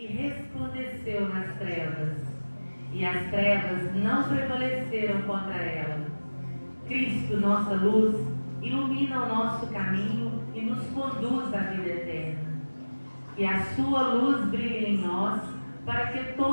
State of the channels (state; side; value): inverted; both; correlation -1.00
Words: resplandeceu nas trevas, e as trevas não prevaleceram contra ela. Cristo, nossa luz, ilumina o nosso caminho e nos conduz à vida eterna. Que a sua luz brilhe em nós, para que